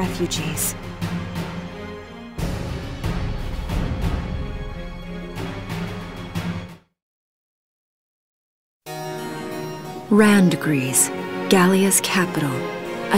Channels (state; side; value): identical; both; correlation 1.00